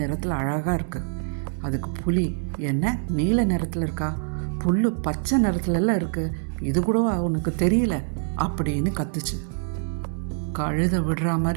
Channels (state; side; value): silent; left; digital silence